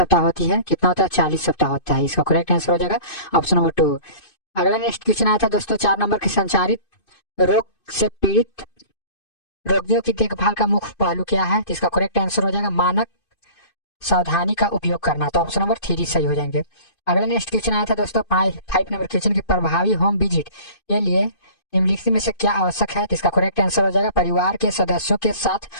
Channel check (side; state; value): right; late; 2.5 ms